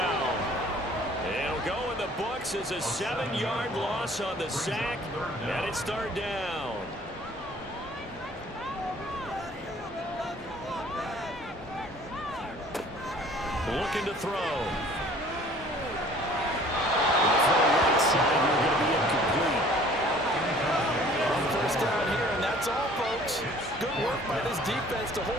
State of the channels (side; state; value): both; normal; correlation 0.53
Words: It'll go in the books as a 7-yard loss on the sack, and it's 3rd down. Looking to throw. The throw right side, you're going to be incomplete. First down here, and that's all, folks. Good work by this defense to